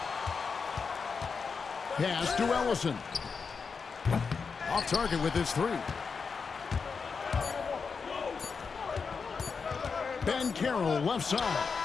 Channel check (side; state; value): right; quieter; 5.3 dB